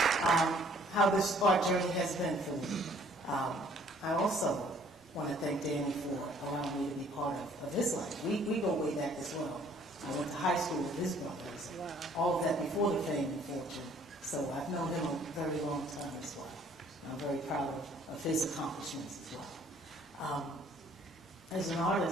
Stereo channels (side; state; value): both; normal; correlation 0.59